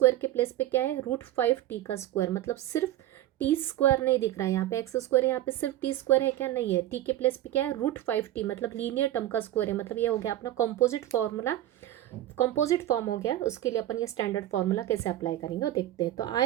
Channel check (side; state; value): left; quieter; 13.7 dB